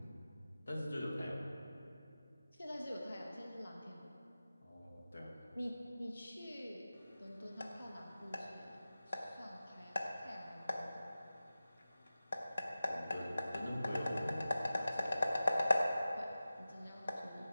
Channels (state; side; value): inverted; both; correlation -0.95